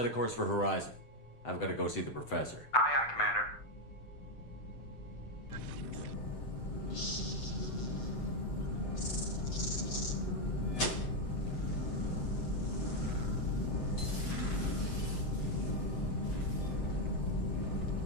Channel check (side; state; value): right; late; 7.9 ms